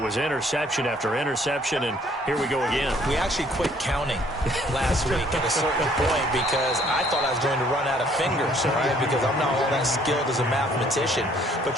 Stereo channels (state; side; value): normal; both; correlation 0.61